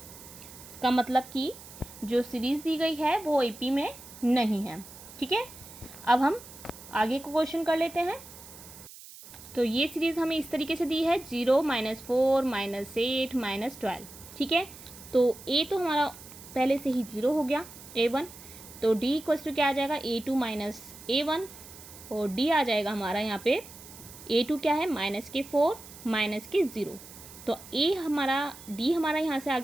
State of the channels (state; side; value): noise; right; hiss, 17 dB below the sound